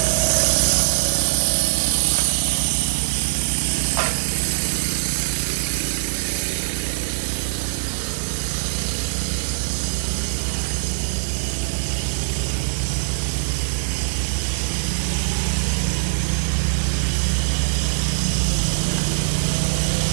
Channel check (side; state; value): left; silent; digital silence